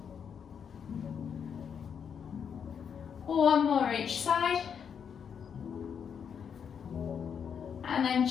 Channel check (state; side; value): quieter; right; 7.3 dB